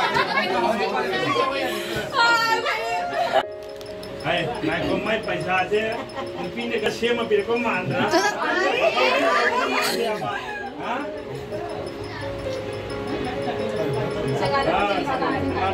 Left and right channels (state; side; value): identical; both; correlation 1.00